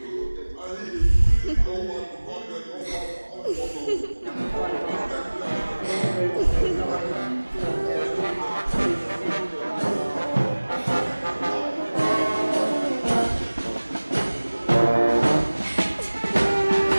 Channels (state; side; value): inverted; both; correlation -1.00